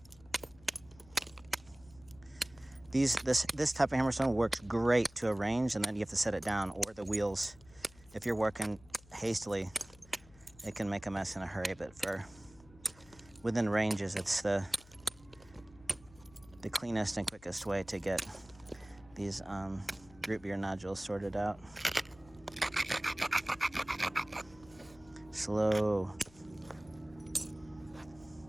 This type of hammerstone works great to a range, and then you have to set it down, or the wheels. If you're working hastily, it can make a mess in a hurry, but for within ranges, it's the cleanest and quickest way to get these root beer nodules sorted out. Slow.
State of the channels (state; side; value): noise; left; hum, 24 dB below the sound